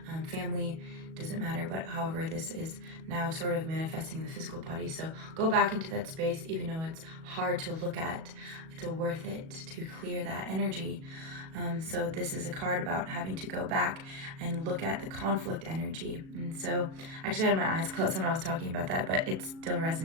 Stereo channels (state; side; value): late; left; 37 ms